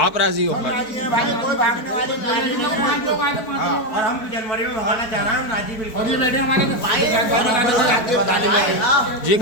आप राजी हो? भाई कोई भागने वाली और हम जनवरी में भगाना चाह रहे हैं, हम राजी बिल्कुल। और ये बैठे हमारे जी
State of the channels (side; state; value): right; late; 4.6 ms